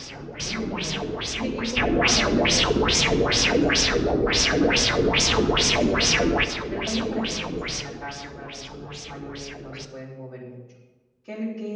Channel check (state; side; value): identical; both; correlation 1.00